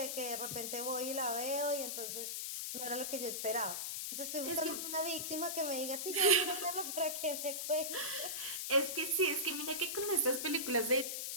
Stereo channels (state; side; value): noise; left; hiss, 3 dB below the sound